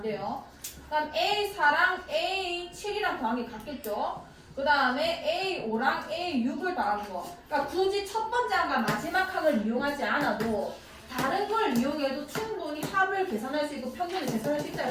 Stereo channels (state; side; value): identical; both; correlation 1.00